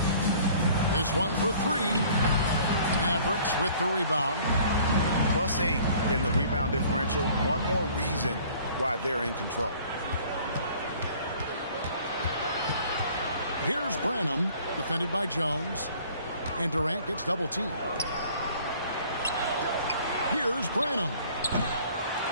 This one for three. Mavericks with the rebound. +8 in the rebound differential. One more reason why they're in control. Here's Branham, defended by Jones. And Durant gets double teamed. Here's Branham.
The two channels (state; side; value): inverted; both; correlation -0.53